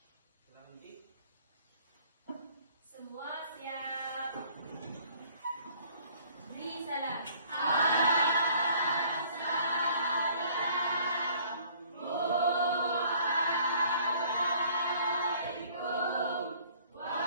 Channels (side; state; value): both; inverted; correlation -0.56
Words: Silakan Uci. Semua siap. Beri salam.